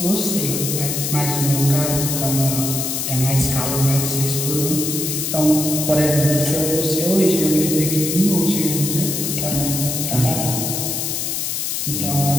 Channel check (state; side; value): noise; left; hiss, 2 dB below the sound